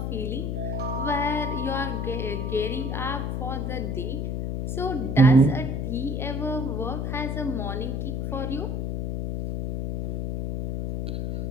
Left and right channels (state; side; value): noise; left; hum, 1 dB below the sound